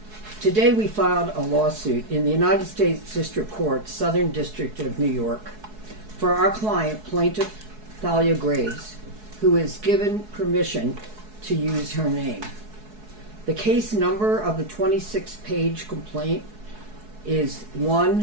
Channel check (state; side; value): late; left; 4.7 ms